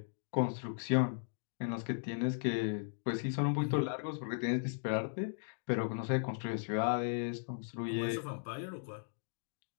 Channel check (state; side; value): silent; right; digital silence